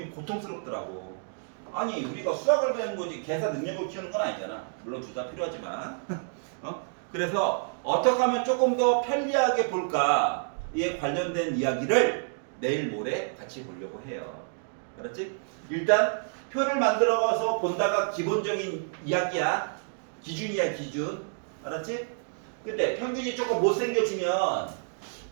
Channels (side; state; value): left; silent; digital silence